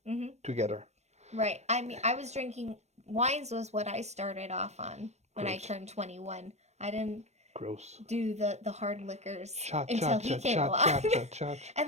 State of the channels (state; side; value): late; left; 0.32 ms